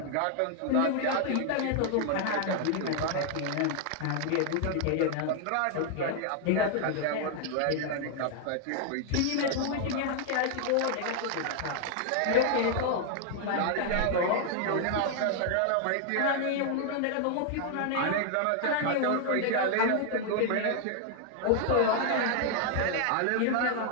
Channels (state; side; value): different; both; correlation 0.00